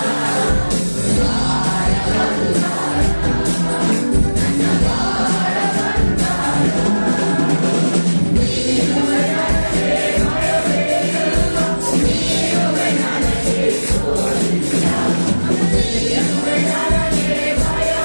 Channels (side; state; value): both; inverted; correlation -1.00